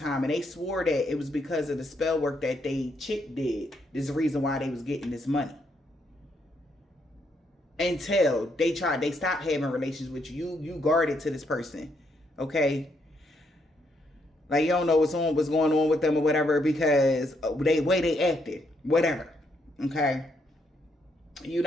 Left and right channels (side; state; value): both; normal; correlation 0.75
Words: and they swore that it was because of the spell work that they chick did. This is the reason why they was getting this money. Until they stopped having relations with you. You guarded to this person. Okay? Like you don't know what's going on with them or whatever because the way they acted. Whatever. Okay? You're